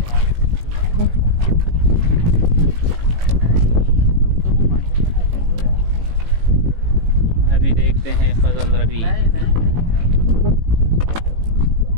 अभी देखते हैं फजल रबी।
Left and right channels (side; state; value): left; late; 18 ms